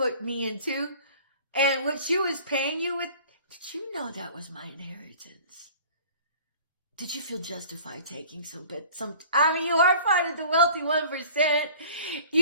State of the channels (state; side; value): inverted; both; correlation -0.46